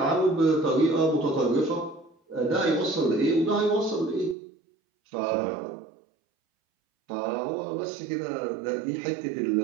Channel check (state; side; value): drops out; left; at 4.4 s